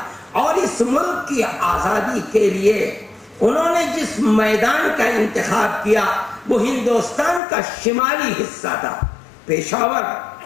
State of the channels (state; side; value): drops out; right; at 7.4 s